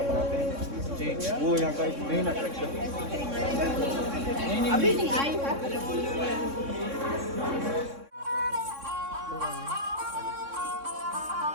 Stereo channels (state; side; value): late; left; 3.6 ms